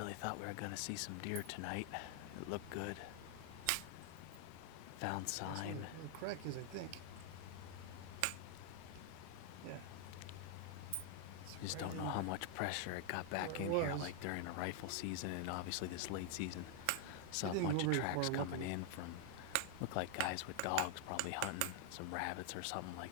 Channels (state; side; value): different; both; correlation 0.00